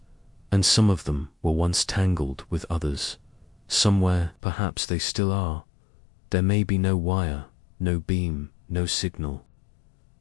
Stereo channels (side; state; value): right; drops out; at 4.4 s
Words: and some of them were once tangled with others. Somewhere, perhaps they still are. There may be no wire, no beam, no signal,